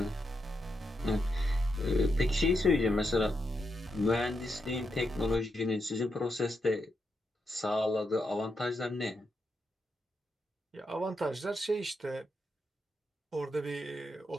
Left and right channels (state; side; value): normal; both; correlation 0.83